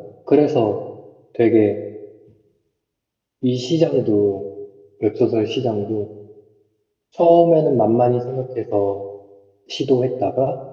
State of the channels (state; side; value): identical; both; correlation 1.00